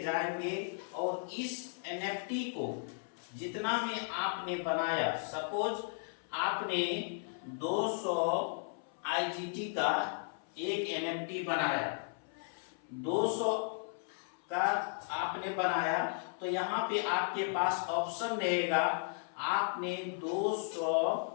जाएंगे और इस एनएफटी को जितना में आपने बनाया, सपोज आपने 200 आईजीटी का एक एनएफटी बनाया, 200 का आपने बनाया, तो यहाँ पे आपके पास ऑप्शन रहेगा, आपने 200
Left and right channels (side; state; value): right; silent; 54 dB below the other